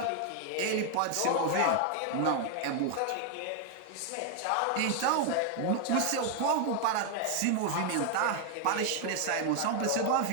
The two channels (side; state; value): both; different; correlation 0.00